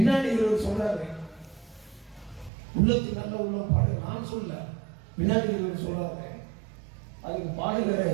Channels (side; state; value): left; drops out; at 2.5 s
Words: இவர் சொல்றாரு, உள்ளத்துக்கு நல்ல உள்ளம் பாடு. நான் சொல்ல, பின்னாடி இவர் சொல்றாரு. அதுக்கு பாடுகிற